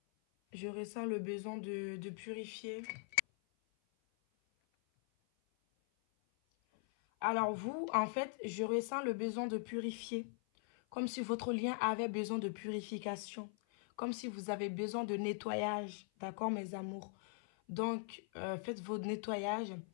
Je ressens le besoin de purifier. Alors vous, en fait, je ressens le besoin de purifier. Comme si votre lien avait besoin de purification. Comme si vous avez besoin de nettoyage. D'accord, mes amours? Donc, faites votre nettoyage.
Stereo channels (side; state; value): right; silent; 50 dB below the other